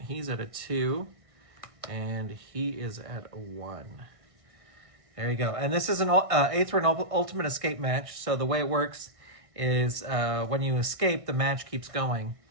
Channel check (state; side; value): late; left; 1.6 ms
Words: at a 2. And he is at a 1. There you go. And this is an Aether Ultimate Escape match. So the way it works is when you escape, the match keeps going.